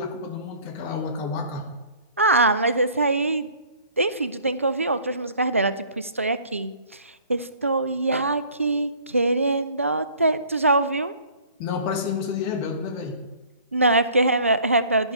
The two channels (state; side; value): inverted; both; correlation -0.52